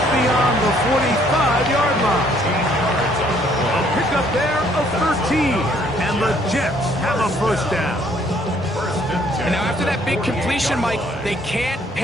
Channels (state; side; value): normal; both; correlation 0.64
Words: beyond the 45-yard line. A pickup there of 13. And the Jets have a first down. And now after that big completion, Mike, they can't